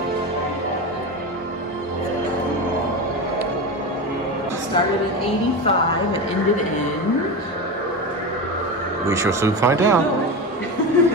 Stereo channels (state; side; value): normal; both; correlation 0.21